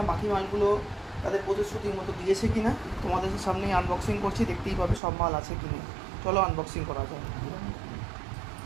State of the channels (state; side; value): drops out; left; at 5.0 s